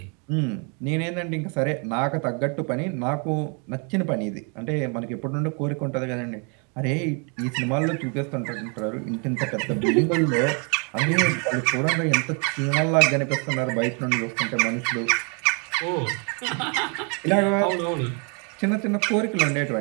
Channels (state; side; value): quieter; left; 35.9 dB